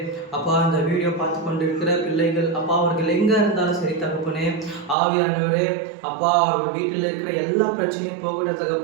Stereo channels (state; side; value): drops out; left; at 5.0 s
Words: அப்பா, இந்த வீடியோ பார்த்து கொண்டிருக்கிற பிள்ளைகள் அப்பா, அவர்கள் எங்கே இருந்தாலும் சரி தகப்பனே, ஆவியானவரே அப்பா, அவர்கள் வீட்டில் இருக்கிற எல்லா பிரச்சனையும் போகட்டும்